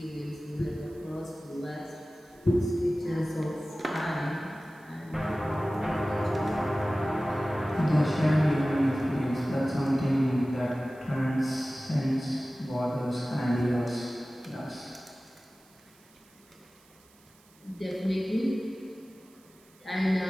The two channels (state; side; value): noise; right; hiss, 29 dB below the sound